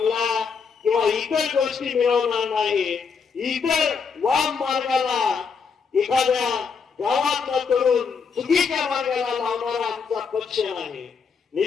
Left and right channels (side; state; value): right; quieter; 5.7 dB